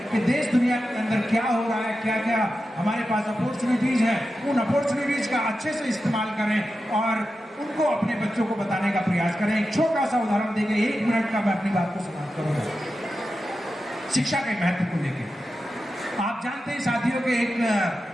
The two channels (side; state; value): both; normal; correlation 0.91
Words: कि देश दुनिया के अंदर क्या हो रहा है, क्या क्या हमारे पास अपॉर्चुनिटीज़ हैं, उन अपॉर्चुनिटीज़ का अच्छे से इस्तेमाल करें और उनको अपने बच्चों को बताने का प्रयास करें। एक छोटा सा उदाहरण देकर 1 मिनट का मैं अपनी बात को समाप्त करूंगा। शिक्षा के महत्व को लेकर आप जानते हैं साथियों के एक